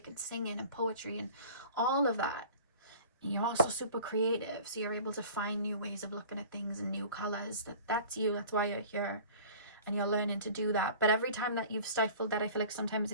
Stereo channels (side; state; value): both; inverted; correlation -0.44